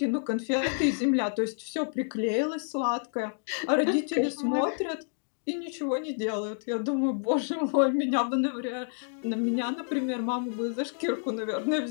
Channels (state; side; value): silent; right; digital silence